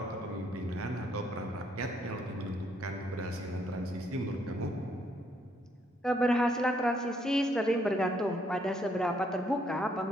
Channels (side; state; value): both; normal; correlation 0.70